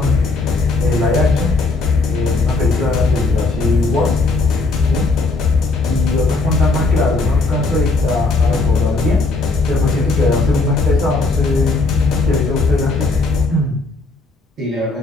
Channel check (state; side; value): quieter; right; 3.6 dB